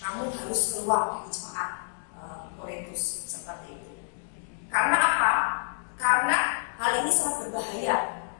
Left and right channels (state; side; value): silent; right; digital silence